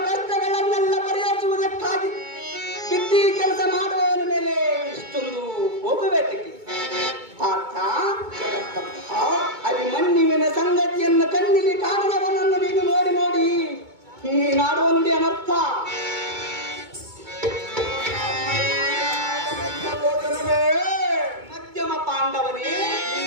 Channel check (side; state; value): left; late; 2.2 ms